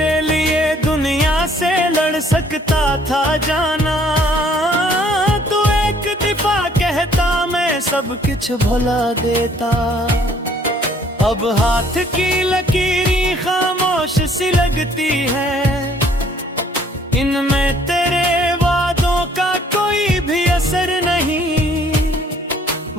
लिए दुनिया से लड़ सकता था जाना, तू एक दफा कहता मैं सब कुछ भुला देता। अब हाथ की लकीरें खामोश सी लगती है, इनमें तेरे वादों का कोई भी असर नहीं।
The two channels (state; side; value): normal; both; correlation 0.60